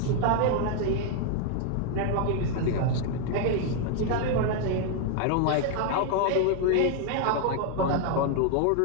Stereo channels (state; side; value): different; both; correlation 0.00